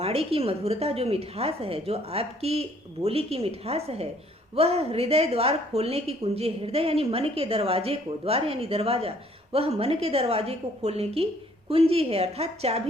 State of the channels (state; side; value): normal; both; correlation 0.61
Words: की मधुरता, जो मिठास है, जो आपकी बोली की मिठास है, वह हृदय द्वार खोलने की कुंजी है। हृदय यानी मन के दरवाजे को, द्वार यानी दरवाजा, वह मन के दरवाजे को खोलने की कुंजी है, अर्थात